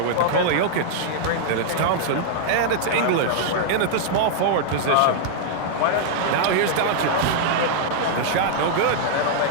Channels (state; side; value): different; both; correlation -0.01